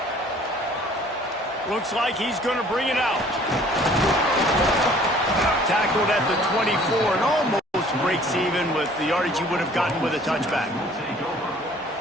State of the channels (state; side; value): normal; both; correlation 0.54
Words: Looks like he's going to bring it out. Tackled at the 24 and almost breaks even with the yardage he would have gotten with a touchback.